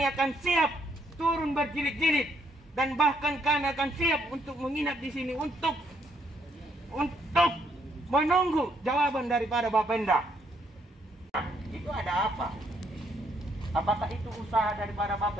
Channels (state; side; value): normal; both; correlation 0.71